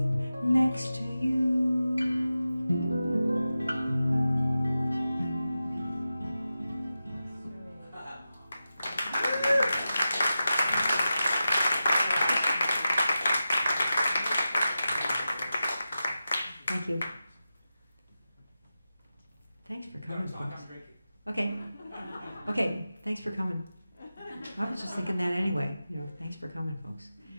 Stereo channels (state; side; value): inverted; both; correlation -0.92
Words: next to you. Thank you. Thanks for coming, folks. Okay. Okay, thanks for coming. I was just thinking that anyway. You know, thanks for coming, folks.